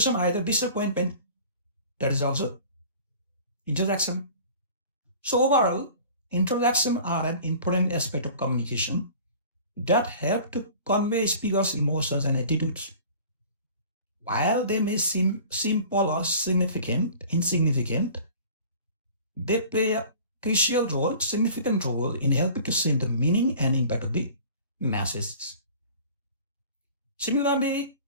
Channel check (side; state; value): both; inverted; correlation -0.45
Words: either disappointment. That is also interjection. So overall, interjections are an important aspect of communication that help to convey speakers' emotions and attitudes. While they may seem simple or insignificant, they play a significant role in helping to send the meaning and impact of the message. Similarly,